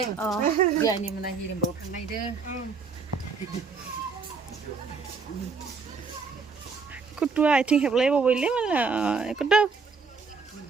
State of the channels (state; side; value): quieter; left; 4.9 dB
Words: Giờ này mình là hirim bầu thằng này đưa. Kutua I think have level boleh mana? Kuda.